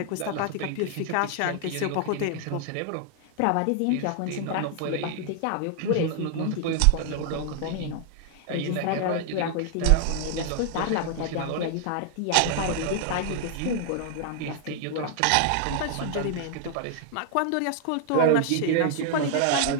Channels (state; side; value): different; both; correlation 0.00